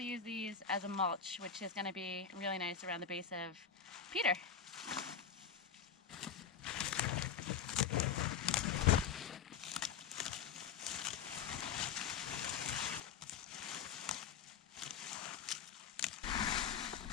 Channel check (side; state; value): right; quieter; 7.4 dB